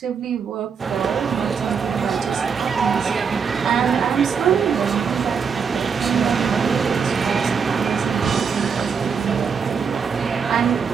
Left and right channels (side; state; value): left; quieter; 6.2 dB